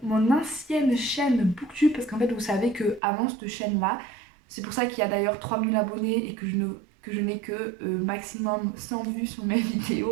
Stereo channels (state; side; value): drops out; left; at 3.0 s